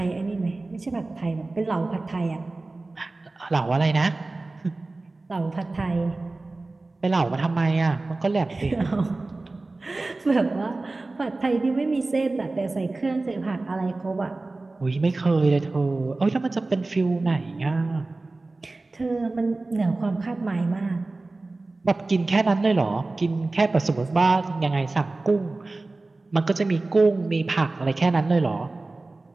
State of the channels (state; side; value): quieter; left; 3.2 dB